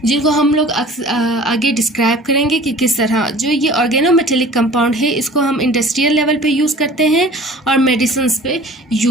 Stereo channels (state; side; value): normal; both; correlation 0.45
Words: जिनको हम लोग आगे डिस्क्राइब करेंगे कि किस तरह। जो ये ऑर्गेनो मेटेलिक कंपाउंड है, इसको हम इंडस्ट्रियल लेवल पे यूज़ करते हैं और मेडिसिन्स पे